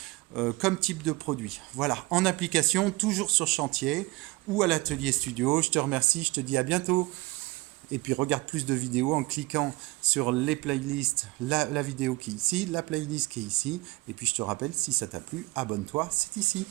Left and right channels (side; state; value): left; quieter; 22.3 dB